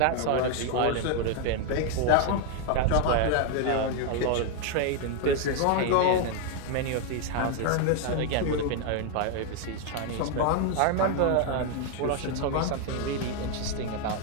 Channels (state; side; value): different; both; correlation 0.00